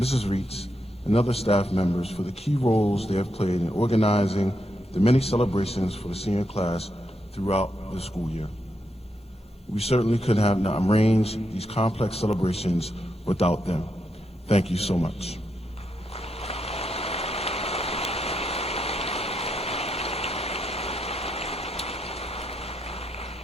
Reitz, and other staff members for the key roles they have played in organizing the many celebrations for the senior class throughout the school year. We certainly could have not arranged these complex celebrations without them. Thank you so much.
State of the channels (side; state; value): both; normal; correlation 0.82